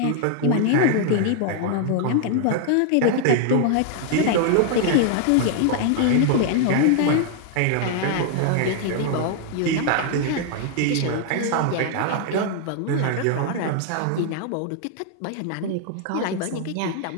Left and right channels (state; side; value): different; both; correlation 0.00